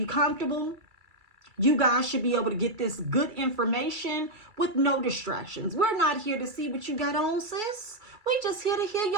comfortable. You guys should be able to get this good information with no distractions. We're not here to see what you got on, sis. We just here to hear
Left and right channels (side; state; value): left; late; 2.3 ms